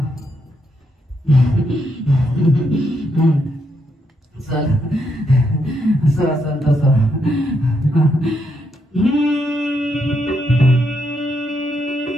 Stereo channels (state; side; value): normal; both; correlation 0.78